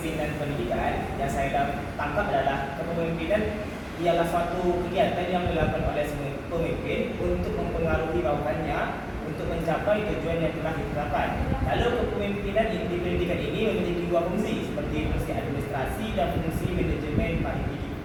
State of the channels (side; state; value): both; identical; correlation 1.00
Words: pendidikan, yang saya tangkap adalah kepemimpinan ialah suatu kegiatan yang dilakukan oleh pemimpin untuk mempengaruhi bawahannya untuk mencapai tujuan yang telah ditetapkan. Lalu kepemimpinan di pendidikan ini memiliki dua fungsi, seperti fungsi administrasi dan fungsi manajemen